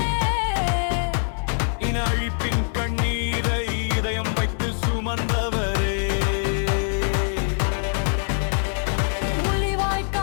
இன அழிப்பின் கண்ணீரை இதயம் வைத்து சுமந்தவரே.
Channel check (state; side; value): silent; right; 60 dB below the other